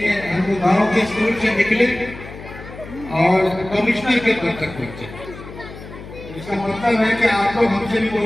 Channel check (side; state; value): left; noise; hum, 15 dB below the sound